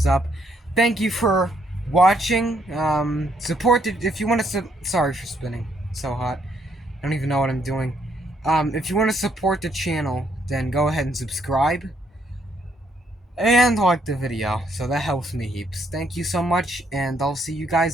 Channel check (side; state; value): both; normal; correlation 0.72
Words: up. Thank you for watching. Support the, if you want to sorry for spinning. It's so hot. I don't even know what I'm doing. If you want to support the channel, then go ahead and subscribe and like the video. So that helps me heaps. Thank you so much, and I'll see you